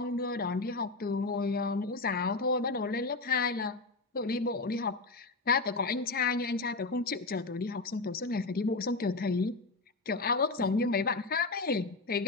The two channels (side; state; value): right; quieter; 3.6 dB